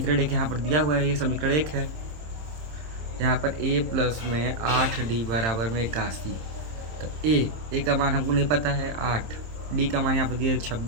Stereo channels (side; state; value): left; late; 26 ms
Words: 1 यहाँ पर दिया हुआ है, ये समीकरण 1 है। यहाँ पर a प्लस में 8d बराबर में 81। तो a का मान हमको नहीं पता है 8, d का मान यहाँ पर दिया